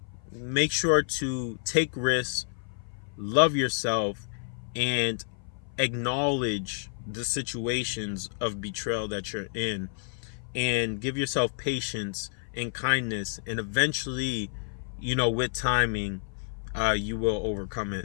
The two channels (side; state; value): right; silent; 55 dB below the other